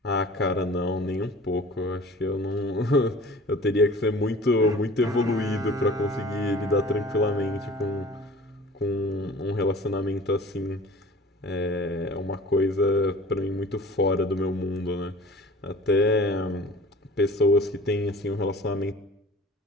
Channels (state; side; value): normal; both; correlation 0.44